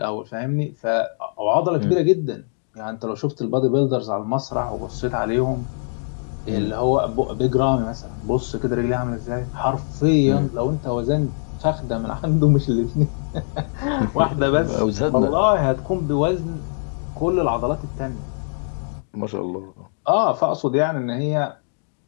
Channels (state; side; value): silent; right; 64 dB below the other